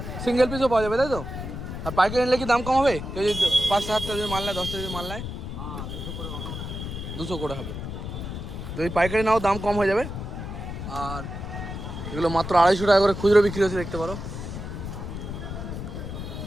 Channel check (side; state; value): left; noise; rumble, 7 dB below the sound